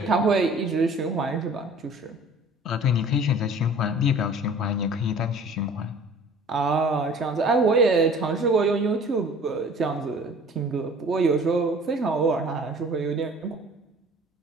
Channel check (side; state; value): both; normal; correlation 0.48